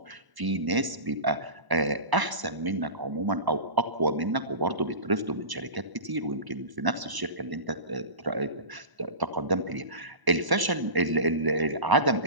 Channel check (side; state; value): left; late; 1.0 ms